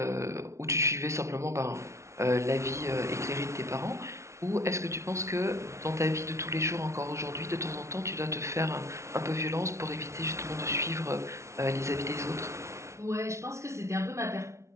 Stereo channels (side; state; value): left; late; 0.13 ms